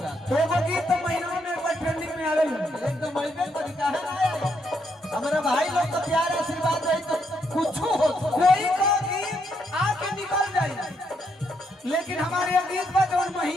एगो गीत तो महीनों में एक बार ट्रेंडिंग में आवे एकदम ऐसे तरीका है ना हमारे भाई लोग तो प्यार आशीर्वाद रही तो कुछ हो कोई का गीत आके निकल जाए, लेकिन हमारे ये गीत पर जो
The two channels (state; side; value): normal; both; correlation 0.76